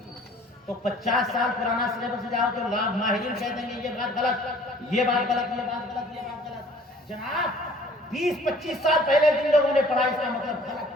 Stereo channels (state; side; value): normal; both; correlation 0.53